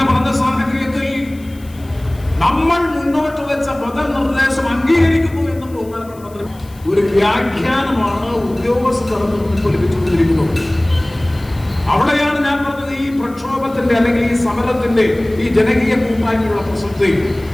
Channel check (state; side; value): noise; left; hiss, 25 dB below the sound